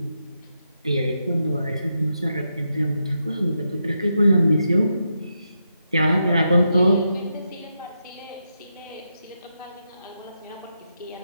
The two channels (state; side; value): inverted; both; correlation -0.84